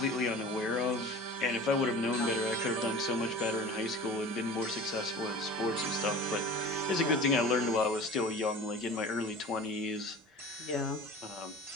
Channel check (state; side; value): normal; both; correlation 0.40